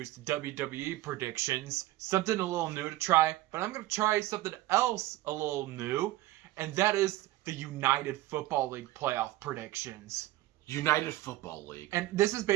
WWE predictions. Something a little new to try, but I'm going to try something else a little new. And that is the United Football League playoff predictions. United Football League. And this is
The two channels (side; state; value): left; quieter; 16.4 dB